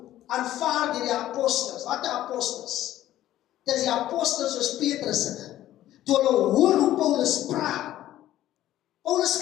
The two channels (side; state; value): right; quieter; 13.5 dB